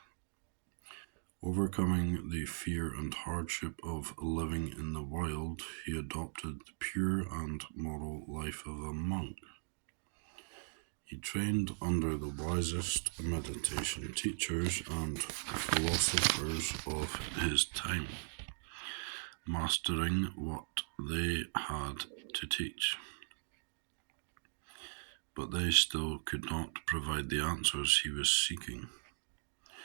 Overcoming the fear and hardship of living in the wild, he adopted the pure and moral life of a monk. He trained under the wisest meditation teachers and philosophers of his time, mastering what they had to teach. But they still could not provide the answers he was seeking.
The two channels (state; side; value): silent; left; digital silence